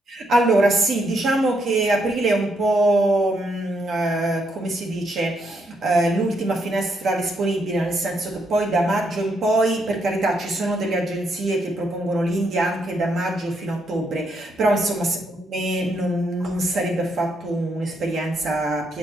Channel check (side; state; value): both; normal; correlation 0.77